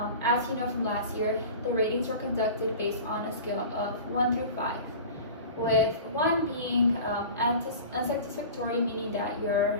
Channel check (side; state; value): both; inverted; correlation -0.37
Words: As you know from last year, the ratings were conducted based on a scale of 1 through 5, with 1 being unsatisfactory, meaning that